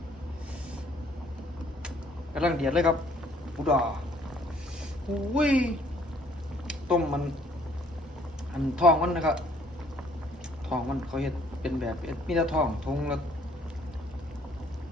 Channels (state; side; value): normal; both; correlation 0.61